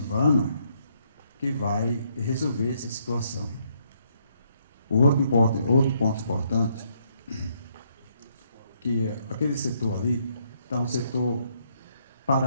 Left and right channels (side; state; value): both; inverted; correlation -0.72